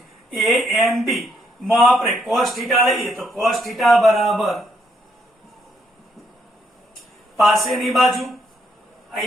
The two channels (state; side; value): normal; both; correlation 0.74